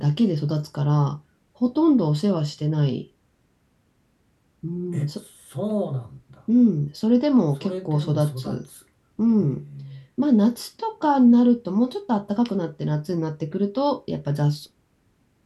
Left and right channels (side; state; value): both; identical; correlation 1.00